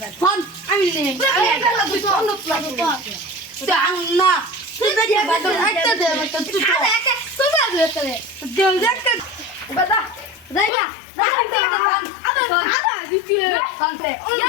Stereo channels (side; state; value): right; drops out; at 10.7 s